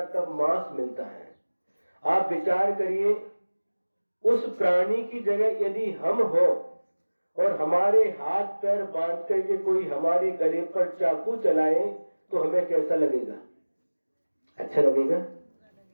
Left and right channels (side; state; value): both; inverted; correlation -1.00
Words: तब मांस मिलता है। आप विचार करिए, उस प्राणी की जगह यदि हम हो और हमारे हाथ पैर बांध करके कोई हमारे गले पर चाकू चलाए तो हमें कैसा लगेगा? अच्छा लगेगा?